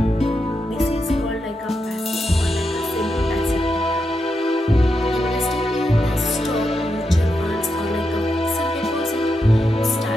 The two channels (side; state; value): both; normal; correlation 0.85